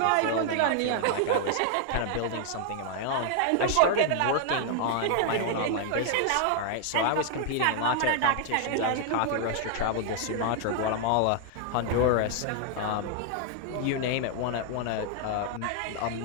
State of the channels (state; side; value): different; both; correlation 0.00